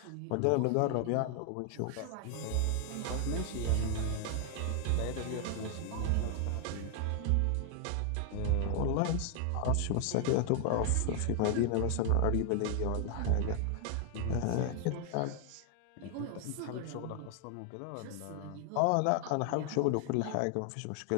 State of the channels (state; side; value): different; both; correlation 0.00